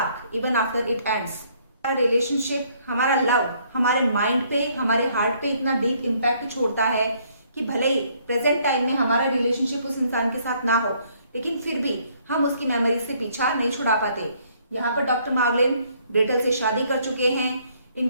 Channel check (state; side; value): inverted; both; correlation -0.66